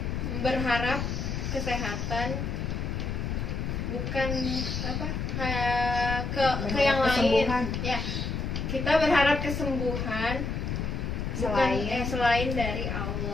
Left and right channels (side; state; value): left; noise; rumble, 2 dB below the sound